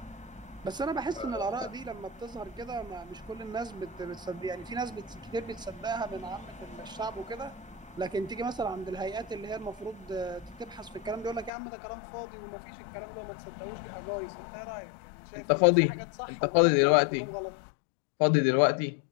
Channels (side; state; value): right; drops out; at 11.5 s